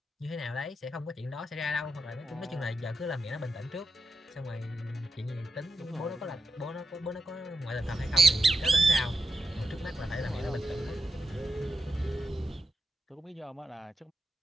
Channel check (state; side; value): normal; both; correlation 0.89